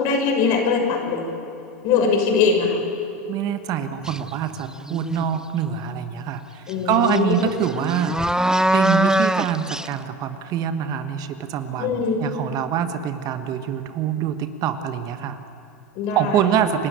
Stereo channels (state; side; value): normal; both; correlation 0.33